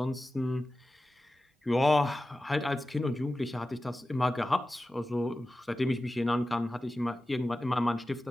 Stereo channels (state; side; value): normal; both; correlation 0.94